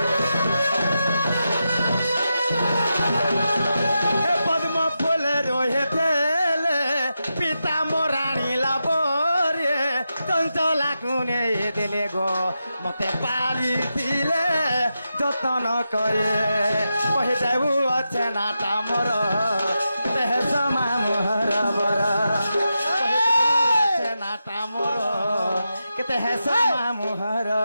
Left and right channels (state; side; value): inverted; both; correlation -0.88